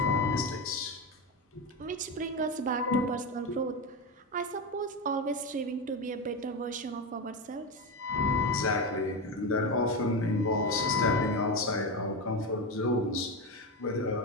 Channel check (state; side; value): normal; both; correlation 0.16